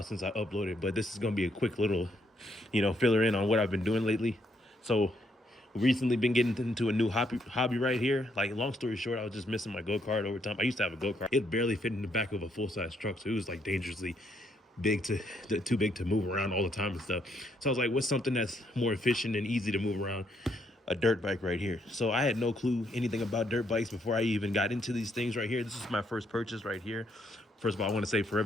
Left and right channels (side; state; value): both; normal; correlation 0.74